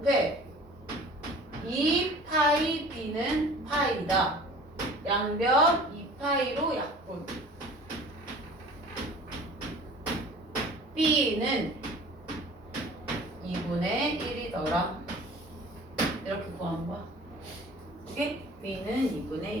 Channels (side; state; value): both; normal; correlation 0.45